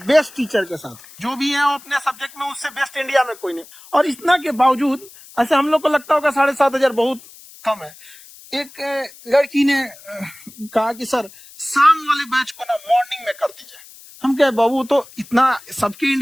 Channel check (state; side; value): noise; left; hiss, 21 dB below the sound